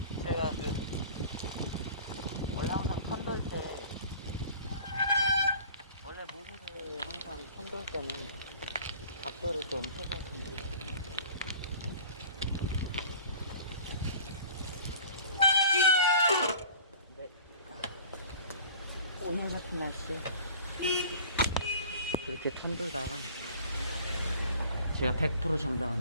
제가 원래 항상 편돌 때, 원래 모두를 항상 편돌 때는 각도를 좀 해서 편돌. 근데 오늘 같은 날씨에 그렇게 편돌다가 제가 100%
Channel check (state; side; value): inverted; both; correlation -0.46